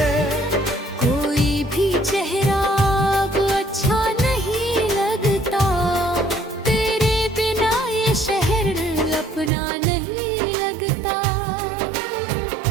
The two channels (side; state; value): left; drops out; at 9.5 s